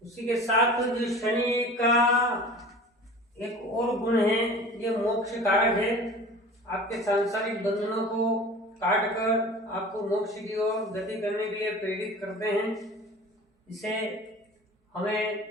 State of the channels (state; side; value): normal; both; correlation 0.40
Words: उसी के साथ जो शनि का एक और गुण है, ये मोक्ष कारक है। आपके सांसारिक बंधनों को काट कर आपको मोक्ष की ओर गति करने के लिए प्रेरित करते हैं। इसे हमें